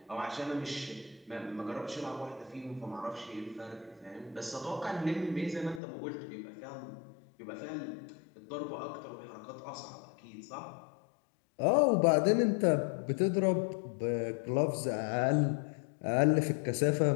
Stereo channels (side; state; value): right; drops out; at 5.8 s